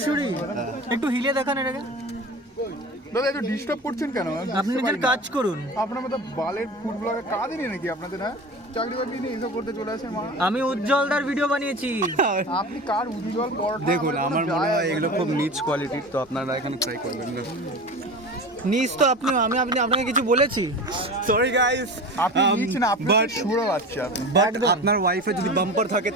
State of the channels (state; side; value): normal; both; correlation 0.32